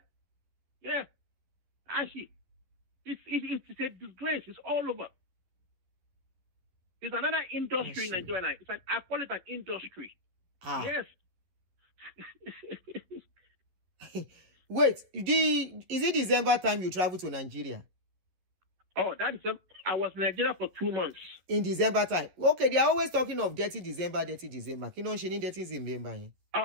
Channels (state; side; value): late; left; 11 ms